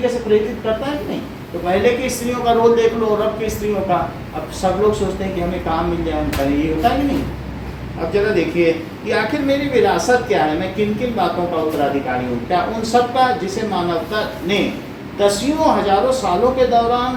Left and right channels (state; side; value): identical; both; correlation 1.00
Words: से प्रेरित करता है कि नहीं? तो पहले की स्त्रियों का रोल देख लो और अब की स्त्रियों का। अब सब लोग सोचते हैं कि हमें काम मिल जाए, हम करें, ये होता है कि नहीं? अब जरा देखिए कि आखिर मेरी विरासत क्या है, मैं किन किन बातों का उत्तराधिकारी हूँ। क्या उन सब का जिसे मानवता ने दसियों हजारों सालों के